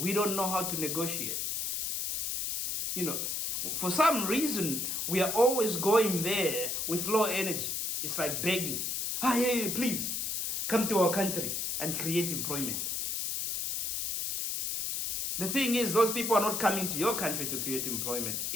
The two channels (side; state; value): left; noise; hiss, 1 dB below the sound